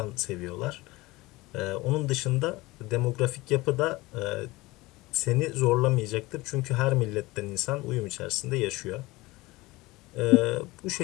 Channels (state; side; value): quieter; right; 20.9 dB